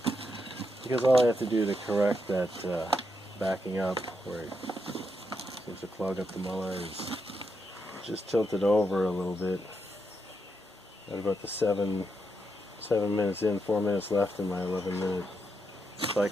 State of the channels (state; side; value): normal; both; correlation 0.82